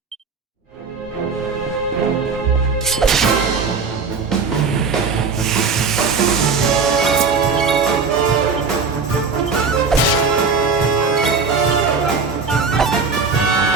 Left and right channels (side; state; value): left; quieter; 5.0 dB